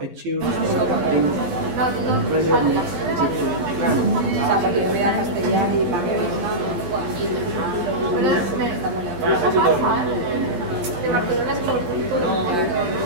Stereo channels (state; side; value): late; left; 12 ms